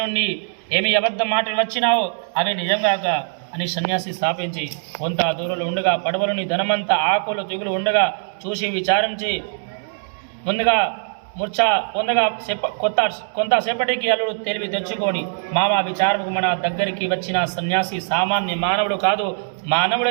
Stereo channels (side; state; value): left; silent; digital silence